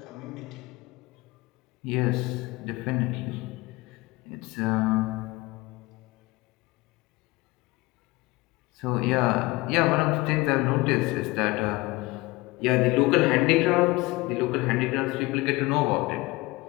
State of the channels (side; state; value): right; quieter; 21.9 dB